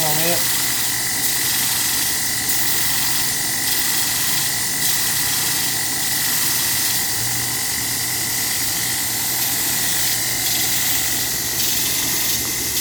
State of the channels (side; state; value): both; identical; correlation 1.00